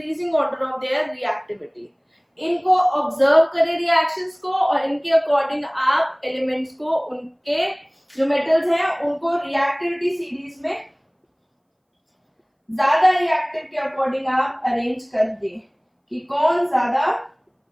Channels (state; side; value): identical; both; correlation 1.00